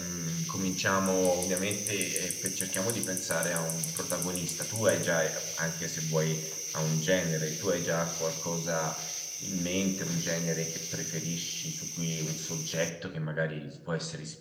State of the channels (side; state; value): both; identical; correlation 1.00